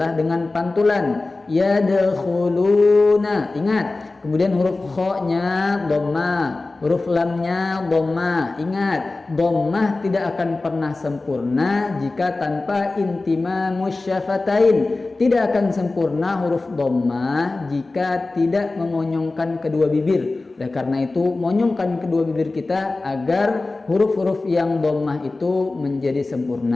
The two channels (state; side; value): quieter; right; 3.3 dB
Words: dengan pantulan, yadkhuluna. Ingat, kemudian huruf kha-nya dhammah, huruf lamnya dhammah. Ingat, dhammah tidak akan pernah sempurna jika tanpa intimamus syafatain. Tidak akan sempurna huruf dhammah jika tidak memonyongkan kedua bibir. Oleh karena itu, monyongkan kedua bibir kita agar huruf-huruf yang dhammah itu menjadi